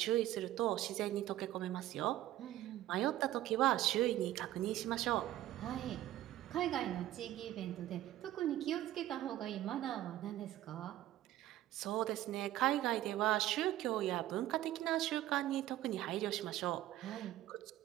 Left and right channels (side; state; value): left; quieter; 14.0 dB